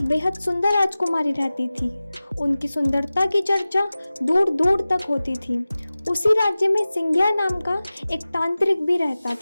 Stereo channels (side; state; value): both; inverted; correlation -0.97